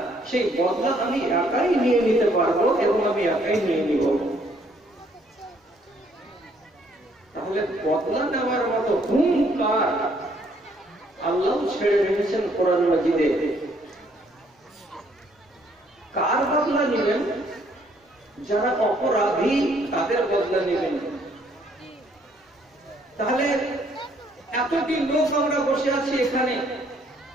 সেই বদলা আমি একাই নিয়ে নিতে পারবো এবং আমি একাই নিয়ে নিব। তাহলে বদলা নেওয়ার মতো হুঙ্কার আল্লাহ ছেড়ে রেখেছেন কোরআন মাজিদে। কার বদলা নেবেন? যারা অপরাধী তাদের বদলা নেবেন। তাহলে এতটি লোক আমরা বসে আছি এখানে,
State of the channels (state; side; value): normal; both; correlation 0.66